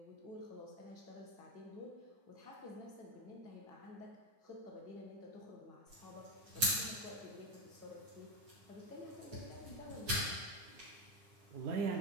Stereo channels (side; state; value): left; late; 9.6 ms